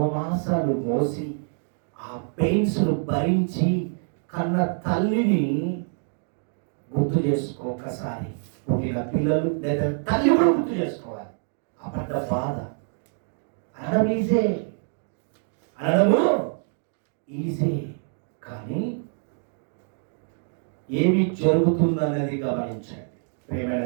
మాసాలు మోసి ఆ పెయిన్స్ను భరించి కన్న తల్లిని గుర్తు చేసుకో. ఒకసారి పుట్టిన పిల్లలు లేదా తల్లి కూడా గుర్తు చేసుకోవాలి. ఆ పడ్డ బాధ అనడము ఈజీ, కానీ ఏమి జరుగుతుందనేది గమనించండి. ప్రియమైన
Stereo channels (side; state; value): left; silent; 58 dB below the other